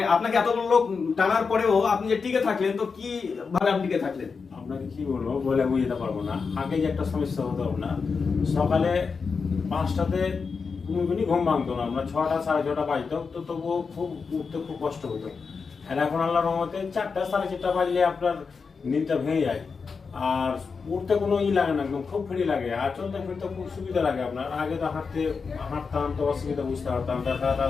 আপনাকে এতগুলো লোক টানার পরেও আপনি যে টিকে থাকলেন, তো কি ভাবে আপনি টিকে থাকলেন? আপনাকে কি বলবো, বলে বুঝতে পারবো না। আগে যে একটা সমস্যা হতো আপনার, সকালে 5টাতে কোনোদিনই ঘুম ভাঙতো না, আমরা 6টা 6:30 বাজতো, তো তবুও খুব উঠতে খুব কষ্ট হতো। আর এখন আল্লাহর রহমতে 4টা 4:30 বাজলে আপনার নিদটা ভেঙে যায়, আর উঠতে কোনো লাগে না, একদম খুব ফ্রি লাগে, আর চলতে ফিরতে খুব সুবিধা লাগে আপনার। আগে তো হাঁটতাম তো অসুবিধা বুঝতে পারতাম, ব্যথা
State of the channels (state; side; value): quieter; right; 5.2 dB